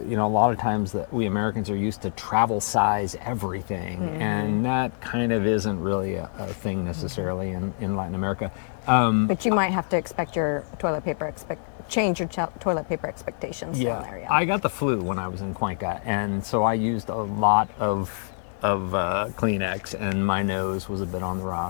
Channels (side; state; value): right; silent; 61 dB below the other